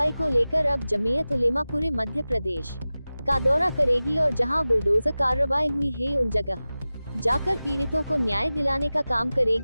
को लेकर अब जमीयत उलेमा पूरे मध्य प्रदेश का दौरा करेगी और जहां बुलडोजर कार्रवाई हुई है उन जगह जाकर पीड़ितों को न्याय दिलाने का काम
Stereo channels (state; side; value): inverted; both; correlation -0.96